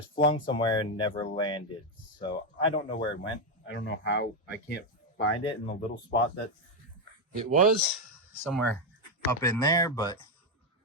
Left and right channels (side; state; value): both; normal; correlation 0.05